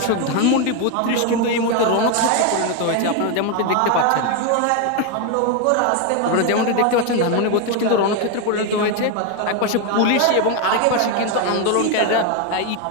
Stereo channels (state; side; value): different; both; correlation 0.02